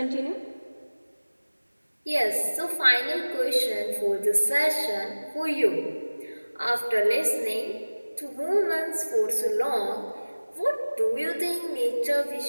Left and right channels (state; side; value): inverted; both; correlation -1.00